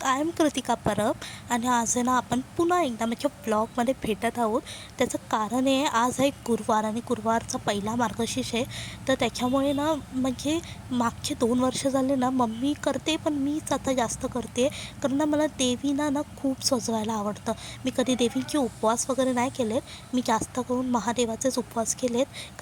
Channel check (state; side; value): identical; both; correlation 1.00